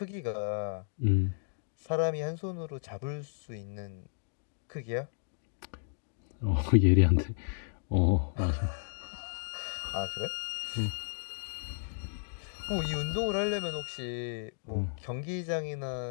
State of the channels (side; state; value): right; silent; digital silence